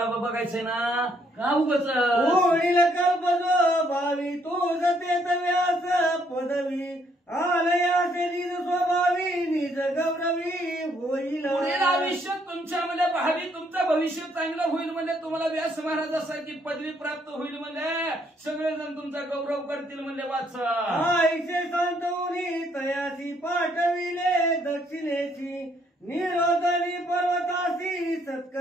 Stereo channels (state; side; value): normal; both; correlation 0.69